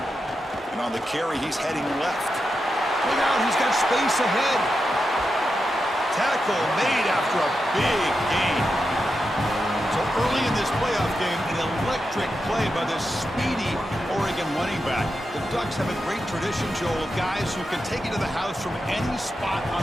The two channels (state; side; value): normal; both; correlation 0.88